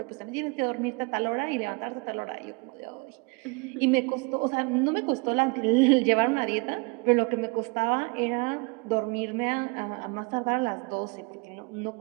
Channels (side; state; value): left; quieter; 30.3 dB